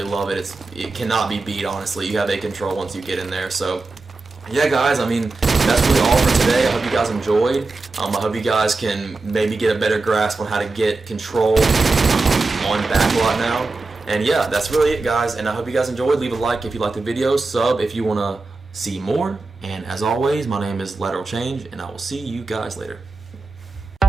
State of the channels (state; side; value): quieter; left; 3.6 dB